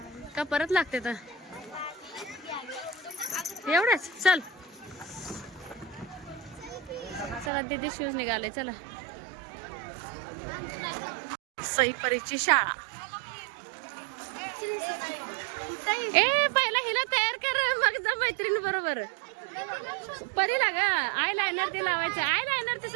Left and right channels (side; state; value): left; drops out; at 7.5 s